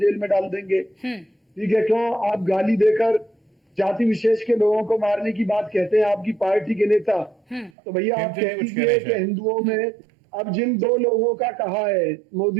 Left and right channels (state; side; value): drops out; left; at 7.7 s